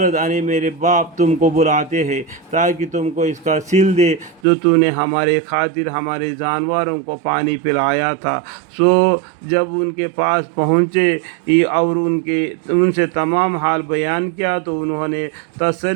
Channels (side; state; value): left; drops out; at 4.4 s